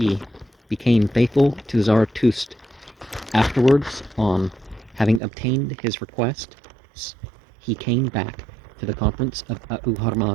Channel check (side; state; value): left; drops out; at 5.2 s